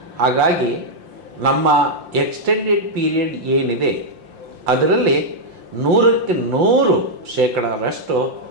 ಹಾಗಾಗಿ ನಮ್ಮ ಎಕ್ಸ್ಟೆಂಡೆಡ್ ಪೀರಿಯಡ್ ಏನಿದೆ ಅದರಲ್ಲಿ 100ಕ್ಕೆ 100%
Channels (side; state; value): left; late; 5.7 ms